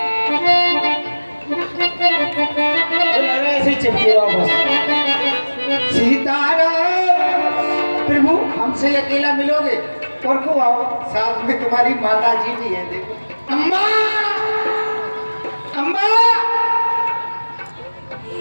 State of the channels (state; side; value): inverted; both; correlation -1.00